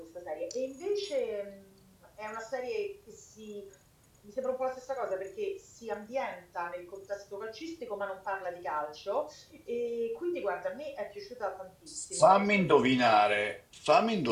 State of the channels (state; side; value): identical; both; correlation 1.00